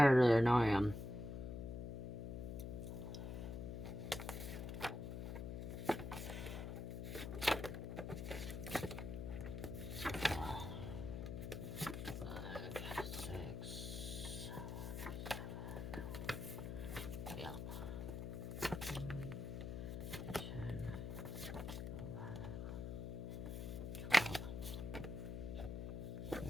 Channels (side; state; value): left; noise; hum, 5 dB below the sound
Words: earlier, now I am.